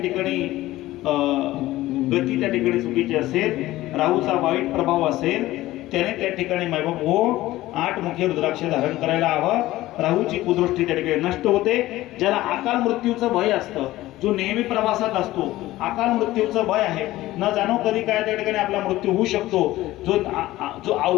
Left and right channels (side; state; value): right; quieter; 16.6 dB